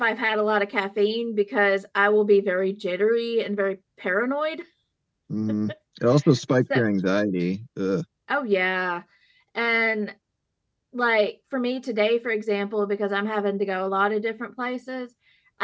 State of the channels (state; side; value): identical; both; correlation 1.00